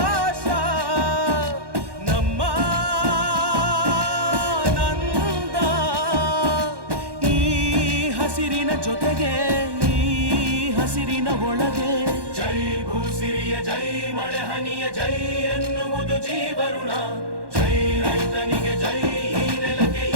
ನಮ್ಮ ನಂದ ಈ ಹಸಿರಿನ ಜೊತೆಗೆ ಈ ಹಸಿರಿನ ಒಳಗೆ ಜೈ ಭೂಸಿರಿಯ ಜೈ ಮಳೆ ಹನಿಯ ಜೈ ಎನ್ನುವುದು ಜೀವರುಣ ಜೈ ರೈತನಿಗೆ ಜೈ ಈ ನೆಲಕ್ಕೆ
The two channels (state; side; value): late; left; 1.1 ms